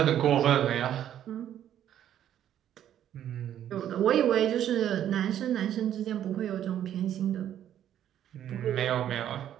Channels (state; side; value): quieter; left; 10.8 dB